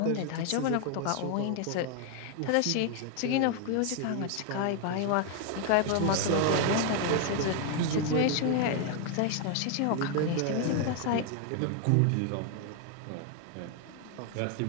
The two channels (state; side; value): different; both; correlation 0.00